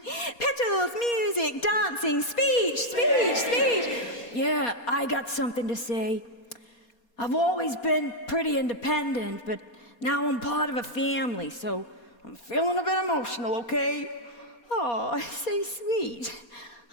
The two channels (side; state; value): right; late; 4.2 ms